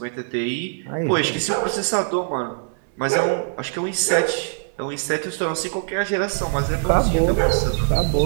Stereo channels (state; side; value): silent; left; digital silence